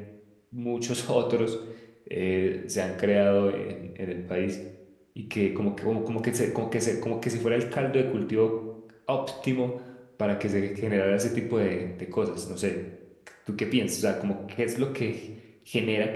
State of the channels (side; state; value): both; identical; correlation 1.00